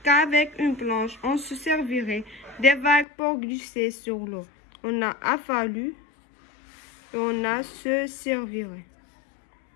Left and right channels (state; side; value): drops out; right; at 3.1 s